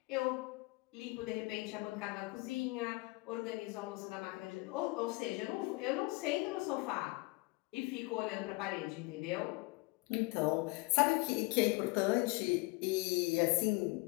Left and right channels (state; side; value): quieter; right; 24.6 dB